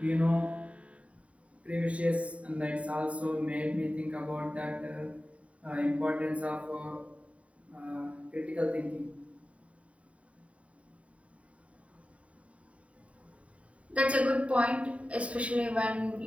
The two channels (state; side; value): late; left; 0.065 ms